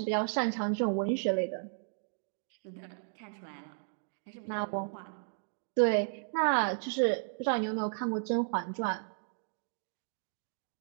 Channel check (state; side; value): silent; left; digital silence